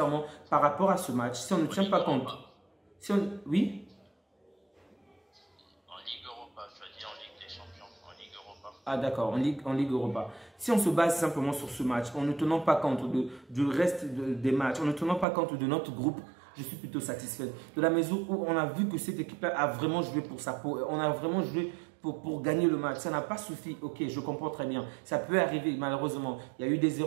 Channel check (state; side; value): drops out; left; at 15.2 s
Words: par rapport à ce match, si on ne tient pas compte, Oui. En Ligue Europa, je veux dire en Ligue des Champions, en Ligue Europa. Ah d'accord, en Ligue Europa. Si on se base simplement sur ce match, en ne tenant pas compte du reste des matchs, en ne tenant pas compte de notre groupe, je suis plutôt satisfait. De la mesure où on a vu que cette équipe-là a vraiment joué pour sa peau. On a vraiment joué pour gagner le match. Ça n'a pas suffi. Ok, je comprends très bien. Ça peut arriver, malheureusement. Il y a eu des